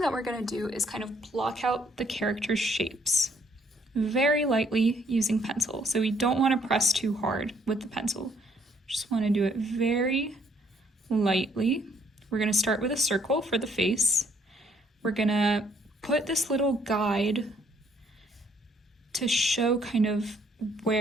that we're going to do is kind of block out the character's shapes very lightly using pencil. So we don't want to press too hard with the pencil. Just want to do it very lightly. We're going to start with a circle for the face. We're going to put this little guide to show kind of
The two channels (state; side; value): normal; both; correlation 0.66